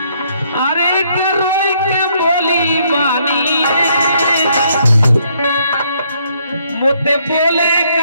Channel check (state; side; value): inverted; both; correlation -0.70